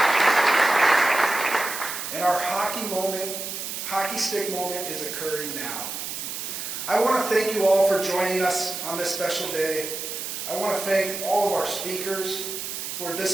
And our hockey stick moment is occurring now. I want to thank you all for joining us on this special day. I want to thank all of our speakers for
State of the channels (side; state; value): right; noise; hiss, 6 dB below the sound